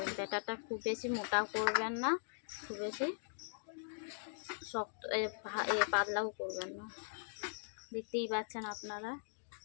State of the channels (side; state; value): right; silent; digital silence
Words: ব্যাটারটা খুব বেশি মোটা করবেন না, খুব বেশি শক্ত পাতলাও করবেন না। দেখতেই পাচ্ছেন আপনারা